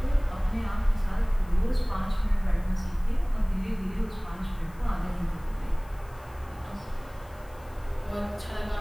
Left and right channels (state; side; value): noise; left; hiss, 27 dB below the sound